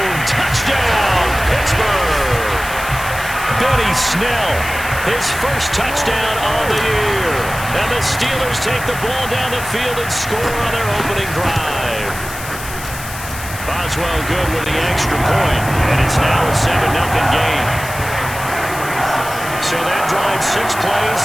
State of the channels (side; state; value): left; noise; hiss, 11 dB below the sound